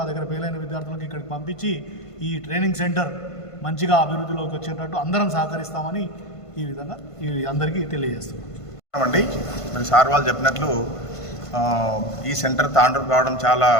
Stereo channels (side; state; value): right; late; 1.5 ms